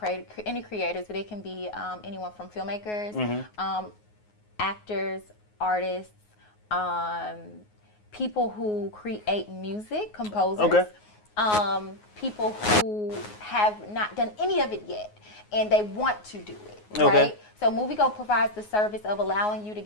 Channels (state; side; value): late; right; 9.5 ms